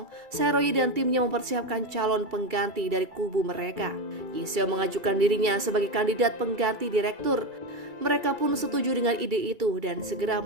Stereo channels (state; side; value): late; left; 2.3 ms